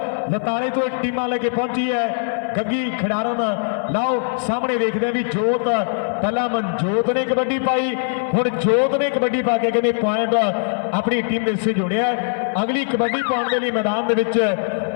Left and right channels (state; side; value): silent; right; 56 dB below the other